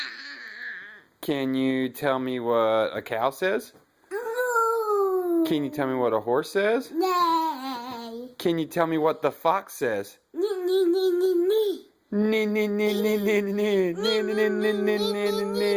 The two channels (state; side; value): identical; both; correlation 1.00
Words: Can you tell me what a cow says? Can you tell me what a horse says? Can you tell me what the fox says? Can